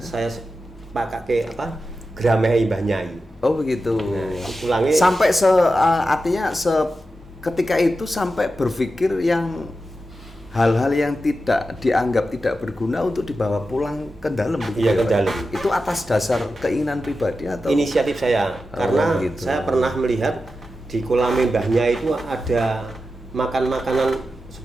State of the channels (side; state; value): both; normal; correlation 0.91